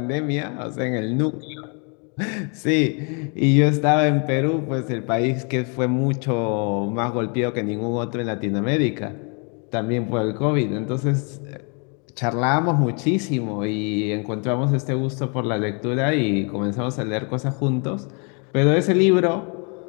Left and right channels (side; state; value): right; quieter; 36.3 dB